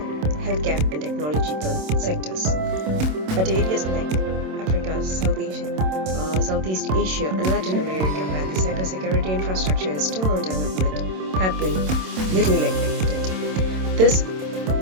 healthcare and technological sectors. But areas like Africa, Southeast Asia and Latin America, where the cybersecurity infrastructure is still on development, have been little neglected. This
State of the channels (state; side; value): late; left; 27 ms